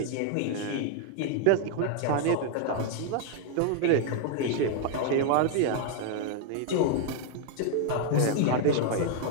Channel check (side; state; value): both; different; correlation 0.00